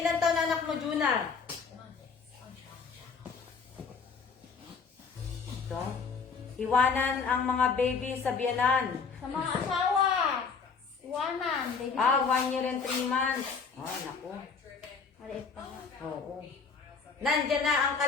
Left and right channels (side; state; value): right; quieter; 5.3 dB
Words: Ilan taon na anak mo, Juna? Ito. Iwanan ang mga baby sa biyanan. Sa mga asawa. Iwanan. Baby. 1 year and 3 months. Oh, naku. Maliit pa nga. Oo. Nandyan na ang